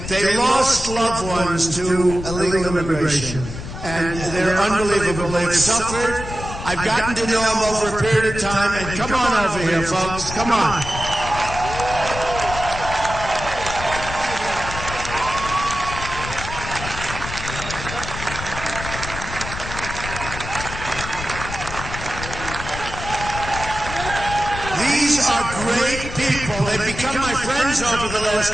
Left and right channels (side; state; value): left; noise; rumble, 8 dB below the sound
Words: They lost loved ones to illegal immigration. And they're unbelievable. They've suffered. I've gotten to know them over a period of time. And come on over here, folks. Come on. These are great people. They've become my friends over the last